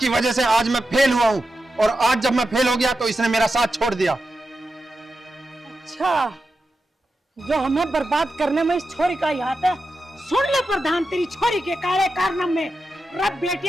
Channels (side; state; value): both; normal; correlation 0.90